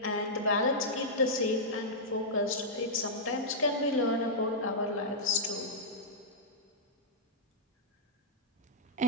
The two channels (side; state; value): both; normal; correlation -0.11